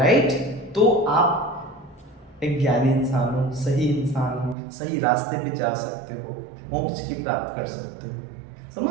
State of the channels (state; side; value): drops out; left; at 4.5 s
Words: तो आप एक ज्ञानी इंसान हो, सही इंसान हो, सही रास्ते पे जा सकते हो, मोक्ष की प्राप्त कर सकते हो।